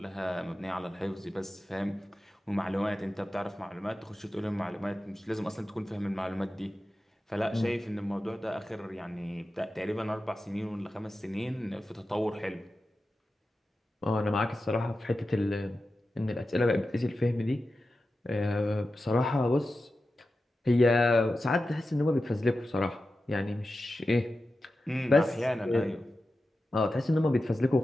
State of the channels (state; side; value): normal; both; correlation 0.93